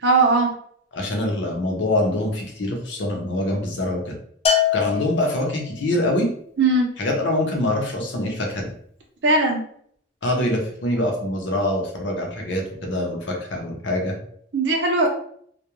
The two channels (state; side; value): normal; both; correlation 0.15